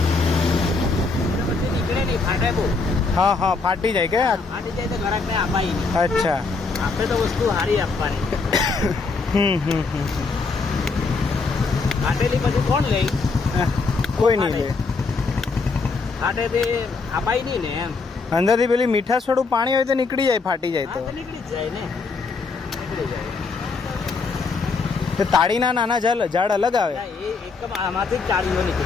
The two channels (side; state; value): right; quieter; 4.3 dB